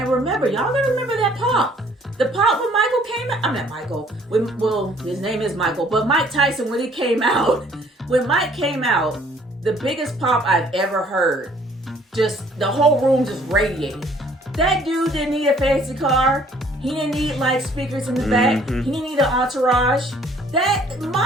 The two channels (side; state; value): both; normal; correlation 0.59